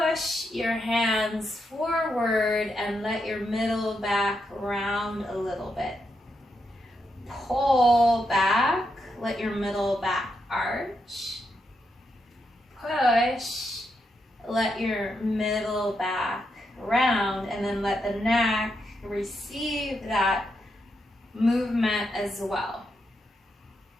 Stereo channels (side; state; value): both; normal; correlation 0.82